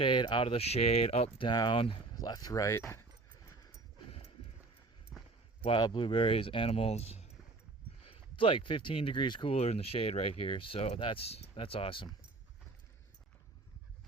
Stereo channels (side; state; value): left; quieter; 3.4 dB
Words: out of the shade, up, down, left, right. Wild blueberries, animals. It's like 15 degrees cooler in the shade right here, so that's awesome.